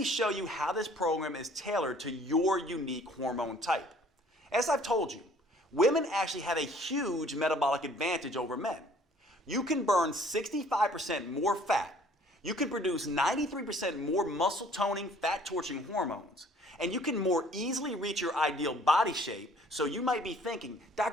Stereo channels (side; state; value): both; normal; correlation 0.56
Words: show you how this program is tailored to your unique hormone type. As I've told you, women actually have a huge metabolic advantage over men. You can burn 65% more fat. You can produce 93% more muscle toning, fat torching hormones. And you can more easily reach your ideal body shape. So you might be thinking,